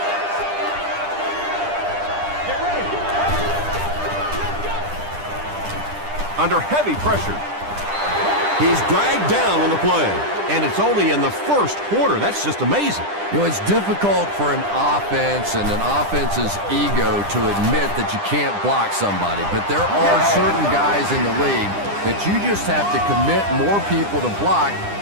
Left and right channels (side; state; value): left; late; 10 ms